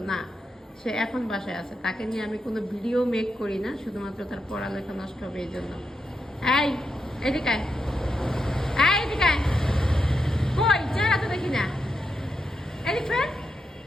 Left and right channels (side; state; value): both; normal; correlation 0.85